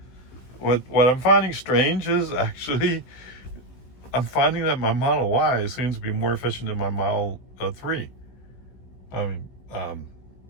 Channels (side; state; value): right; late; 16 ms